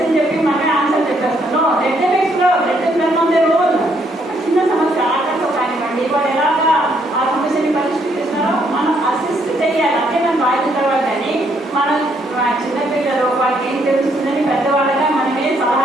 చెప్పి మనమే ఆన్సర్ చెప్పేస్తాను. Let them explore, let them learn on their own. ఒక చిన్న సమస్య ఆటతో కానివ్వండి, వాళ్ళు ఎలాగా ఆ సమస్యని పరిష్కరిస్తున్నారో మనం అసిస్ట్ చేయాలి. అంటే మనం రాయిన తర్వాత కానీ మనం చిన్నపిల్లలు వాళ్ళకి ఏం తెలుస్తుందని పెద్దవాళ్ళగా మనమే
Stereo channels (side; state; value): both; normal; correlation 0.71